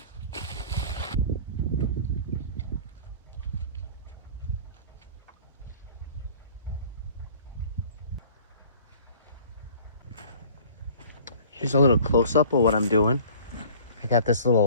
Here's a little close-up of what I'm doing. I got this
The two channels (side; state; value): both; inverted; correlation -0.48